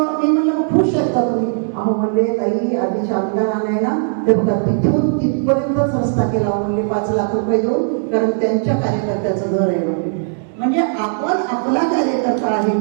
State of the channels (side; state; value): left; silent; 68 dB below the other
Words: म्हणलं खुश आहेत का तुम्ही? अहो म्हणले ताई आधीच्या आमदाराने ना ते बघा तिथून तिथपर्यंतच रस्ता केला म्हणले 5 लाख रुपये देऊन, कारण त्यांच्या कार्यकर्त्याचं घर आहे म्हणजे आपण आपला कार्यकर्ता आहे